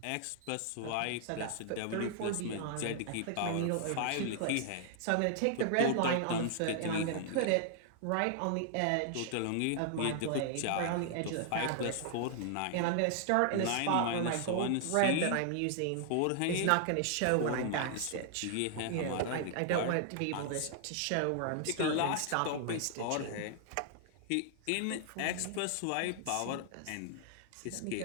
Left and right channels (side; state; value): both; different; correlation -0.01